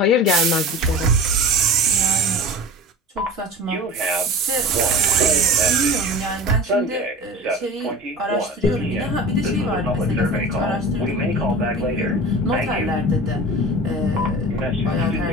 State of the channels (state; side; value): normal; both; correlation 0.35